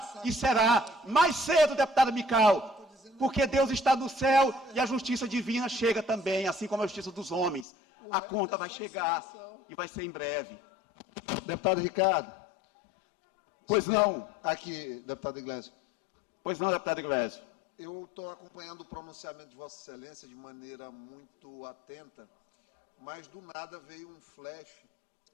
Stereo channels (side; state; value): right; drops out; at 7.7 s